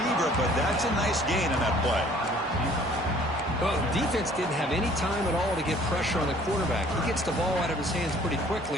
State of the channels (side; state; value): right; noise; hum, 25 dB below the sound